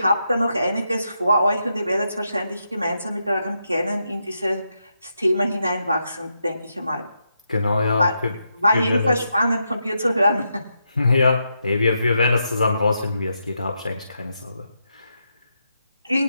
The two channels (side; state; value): both; inverted; correlation -0.83